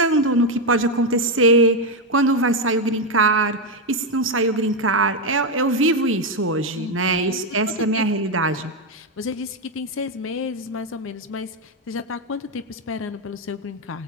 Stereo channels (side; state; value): both; normal; correlation 0.06